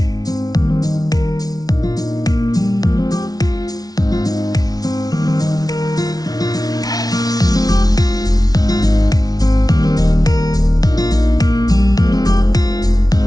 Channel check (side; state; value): right; late; 0.19 ms